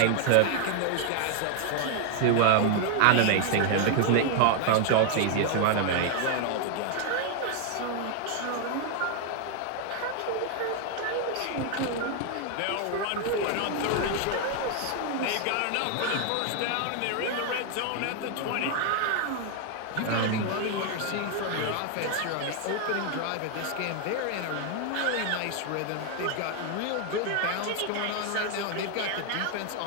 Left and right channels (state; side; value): different; both; correlation 0.00